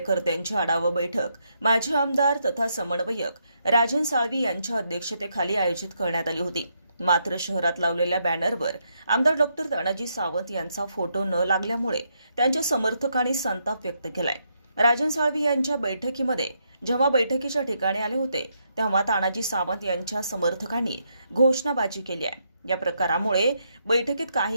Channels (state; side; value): inverted; both; correlation -0.78